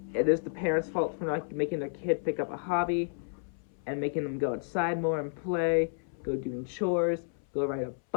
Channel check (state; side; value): silent; right; 57 dB below the other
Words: it is the parents' fault for not making their kid pick up a hobby and making them go outside more and play, go doing chores, go ride a